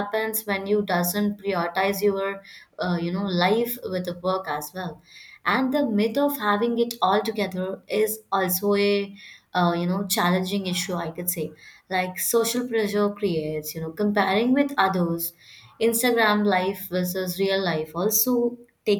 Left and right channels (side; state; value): both; identical; correlation 1.00